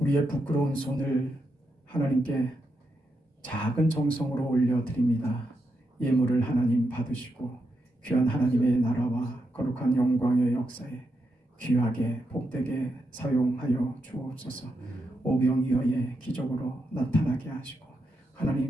부끄러운 손을 하나님께 작은 정성으로 올려드립니다. 예물을 하나님 받으시고 귀한 하나님의 나라와 거룩한 영광의 역사에 귀하게 복되게 사용하여 주옵소서. 오병이어의 기적으로 나타나게 하시고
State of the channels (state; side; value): normal; both; correlation 0.84